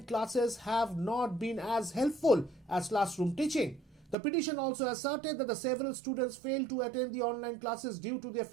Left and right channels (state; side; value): drops out; left; at 4.2 s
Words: classes have not been as helpful as classroom teaching. The petition also asserted that the several students failed to attend the online classes due to their